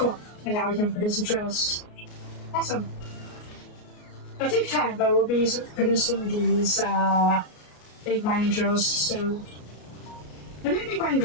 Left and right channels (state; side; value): late; right; 33 ms